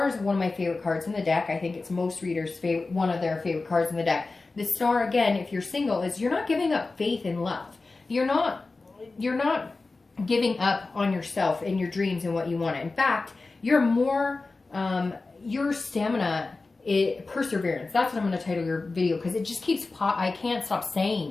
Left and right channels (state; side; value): quieter; right; 3.6 dB